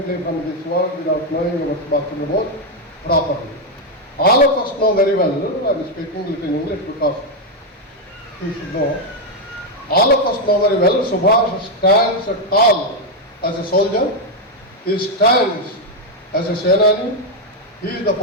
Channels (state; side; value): normal; both; correlation 0.02